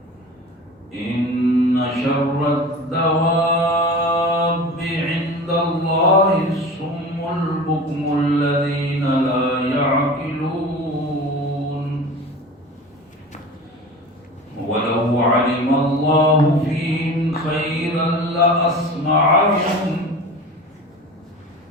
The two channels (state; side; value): normal; both; correlation 0.35